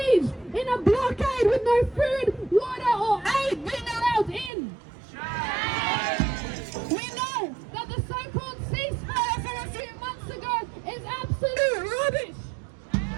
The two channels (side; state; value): left; drops out; at 4.5 s